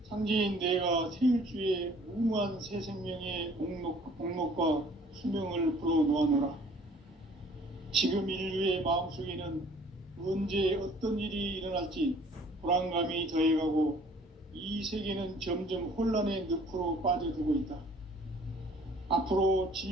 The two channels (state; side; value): normal; both; correlation 0.55